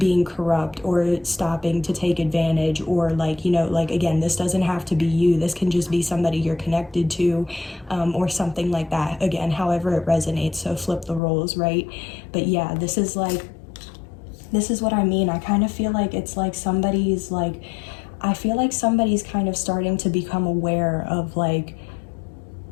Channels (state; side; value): drops out; right; at 11.2 s